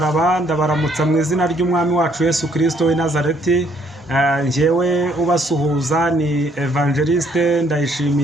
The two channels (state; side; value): normal; both; correlation 0.66